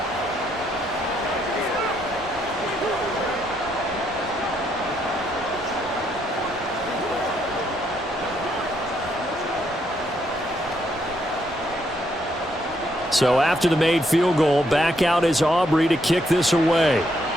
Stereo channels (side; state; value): both; normal; correlation 0.74